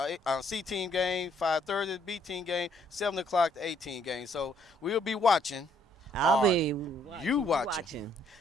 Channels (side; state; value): both; normal; correlation 0.67